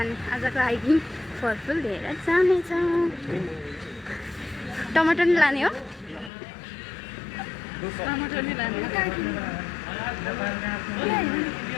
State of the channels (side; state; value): right; drops out; at 6.3 s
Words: आजको हाइकिङ फलफुल लिएर जानेछौँ। टमाटर नि लाने हो? टमाटर नि लाने